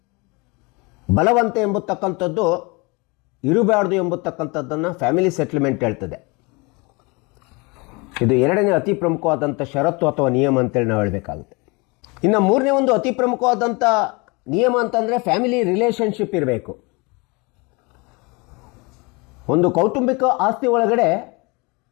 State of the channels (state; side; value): quieter; right; 27.8 dB